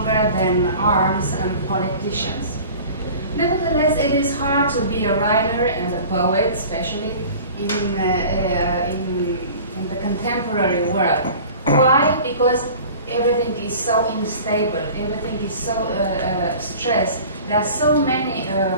than arms and politicians. Nevertheless, it is hard to be a writer and a poet, especially in the contemporary world. Why? Because everything is so unstable, everything is so stressed. There are so many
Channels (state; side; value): inverted; both; correlation -0.42